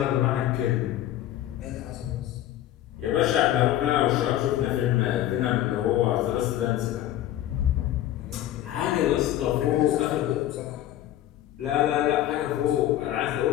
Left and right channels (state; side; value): quieter; right; 12.9 dB